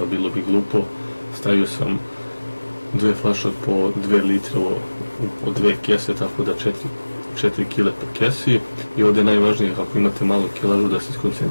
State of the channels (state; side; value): inverted; both; correlation -1.00